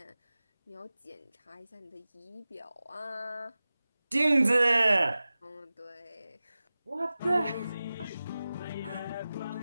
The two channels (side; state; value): both; inverted; correlation -0.96